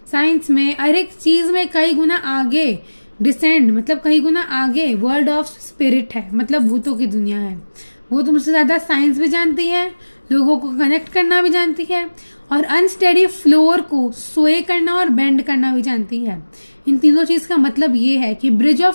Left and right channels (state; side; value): inverted; both; correlation -1.00